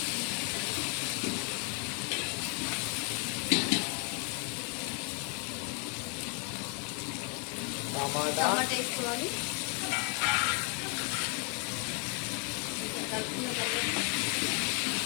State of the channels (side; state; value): right; quieter; 36.9 dB